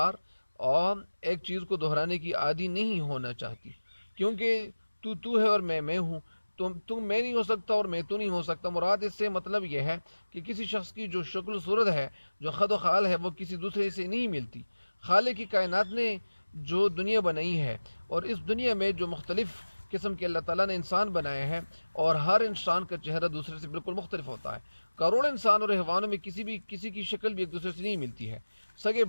اور ایک چیز کو دہرانے کی عادی نہیں ہونا چاہتی، کیونکہ تو ہے اور میں ہوں. تم میں نہیں ہو سکتا اور میں تو نہیں ہو سکتا. مراد اس سے مطلب یہ ہے کہ کسی شخص کی جو شکل و صورت ہے، جو خد و خال ہے، وہ کسی دوسرے سے نہیں ملتی. خالق کی کائنات نے جو دنیا بنائی ہے، اور اس دنیا میں جو مختلف قسم کے اللہ تعالیٰ نے انسان بنائے ہیں، اور ہر انسان کا چہرہ دوسرے سے بالکل مختلف ہوتا ہے. کروڑ انسان اور حیوانوں میں کسی کی شکل بھی ایک دوسرے سے نہیں ملتی ہے. سگے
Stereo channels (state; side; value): inverted; both; correlation -1.00